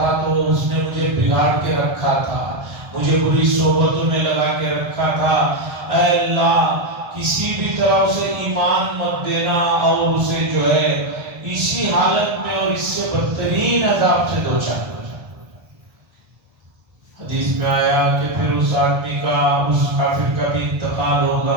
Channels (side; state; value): left; late; 1.3 ms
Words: تو اس نے مجھے بگاڑ کے رکھا تھا، مجھے بری صحبتوں میں لگا کے رکھا تھا، اے اللہ کسی بھی طرح اسے ایمان مت دینا اور اسے جو ہے اسی حالت میں اور اس سے بدترین عذاب سے دوچار کر۔ حدیث میں آیا کہ پھر اس آدمی کا، اس کافر کا بھی انتقال